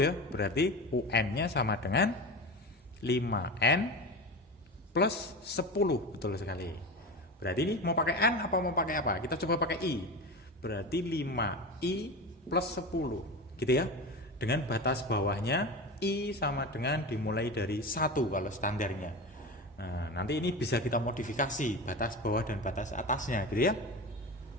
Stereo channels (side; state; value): both; normal; correlation 0.27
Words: Berarti UN-nya sama dengan 5N plus 10. Betul sekali. Berarti ini mau pakai N apa mau pakai apa? Kita coba pakai I. Berarti 5I plus 10. Gitu ya. Dengan batas bawahnya I sama dengan dimulai dari 1 kalau standarnya. Nah, nanti ini bisa kita modifikasi batas bawah dan batas atasnya gitu ya.